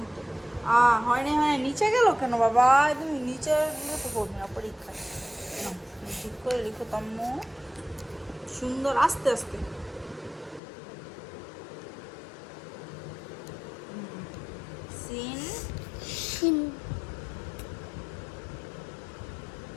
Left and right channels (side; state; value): right; drops out; at 10.6 s